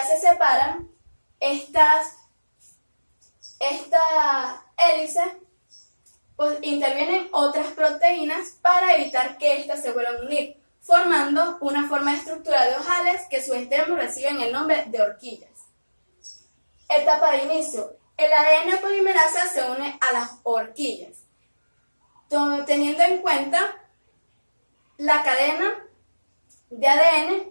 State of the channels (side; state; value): both; inverted; correlation -1.00